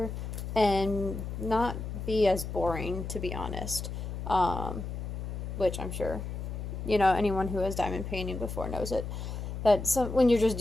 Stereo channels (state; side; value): noise; left; hum, 6 dB below the sound